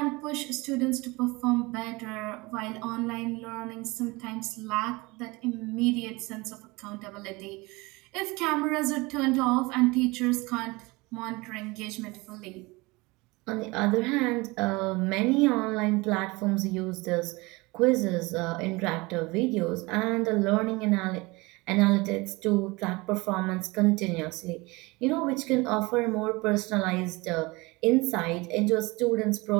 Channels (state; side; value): quieter; left; 23.9 dB